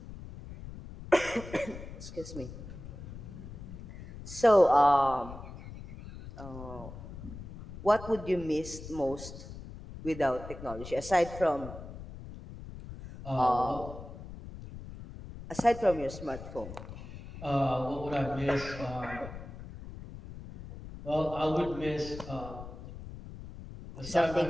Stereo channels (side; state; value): left; noise; rumble, 12 dB below the sound